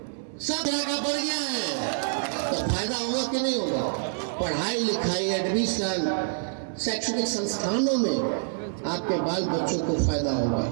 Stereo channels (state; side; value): silent; left; digital silence